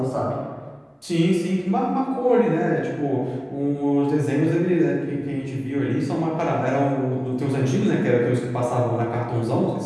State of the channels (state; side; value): identical; both; correlation 1.00